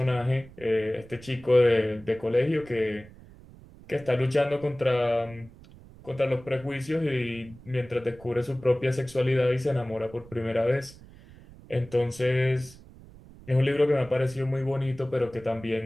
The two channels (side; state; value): right; noise; rumble, 21 dB below the sound